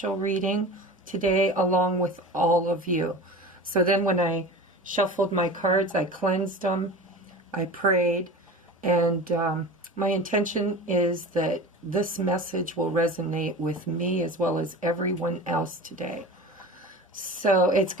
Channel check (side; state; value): both; normal; correlation 0.34